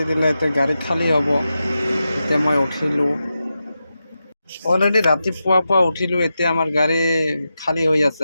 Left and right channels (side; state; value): both; inverted; correlation -0.90